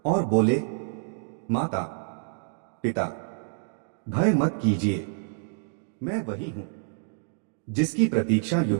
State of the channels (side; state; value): left; silent; digital silence